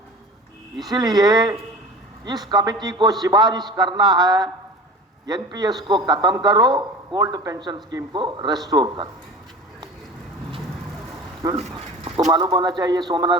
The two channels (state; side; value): normal; both; correlation 0.37